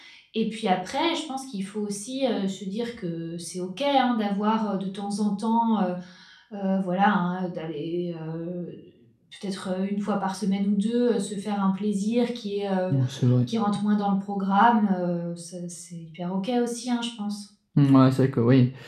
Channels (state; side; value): identical; both; correlation 1.00